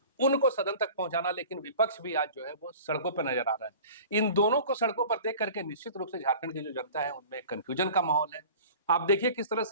उनको सदन तक पहुंचाना, लेकिन विपक्ष भी आज जो है वो सड़कों पर नजर आ रहा है। इन दोनों को सड़कों पर देख करके निश्चित रूप से झारखंड की जो जनता है उनमें कंफ्यूजन का माहौल है। आप देखिए किस तरह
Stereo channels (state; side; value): inverted; both; correlation -0.42